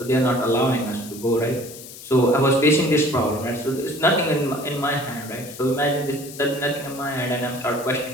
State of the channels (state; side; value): noise; left; hiss, 15 dB below the sound